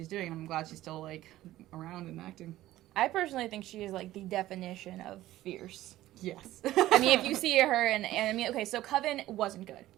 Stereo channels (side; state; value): left; quieter; 15.2 dB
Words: doing, and I'm glad she's still like around and acting. I personally think she is like the definition of fierce. Yes. I mean, if you see her, and I mean, okay, so Coven wasn't good,